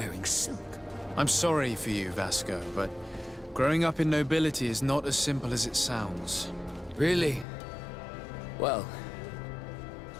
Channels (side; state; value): right; drops out; at 7.5 s